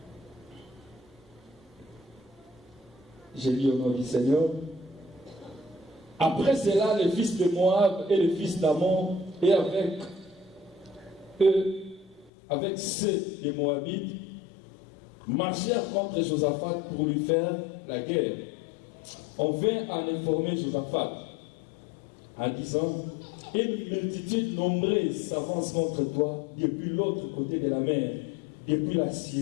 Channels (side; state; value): right; drops out; at 12.3 s